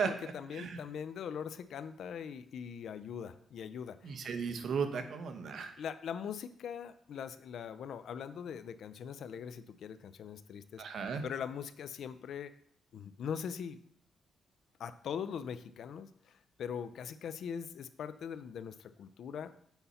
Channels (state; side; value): normal; both; correlation 0.68